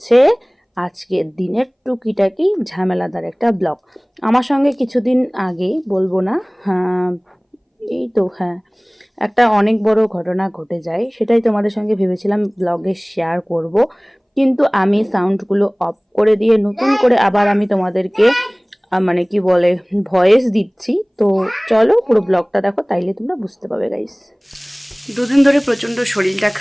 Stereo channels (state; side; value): identical; both; correlation 1.00